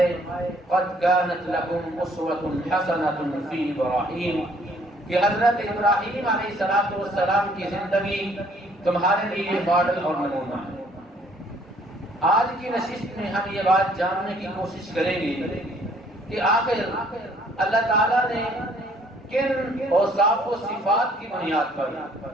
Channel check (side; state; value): both; normal; correlation 0.62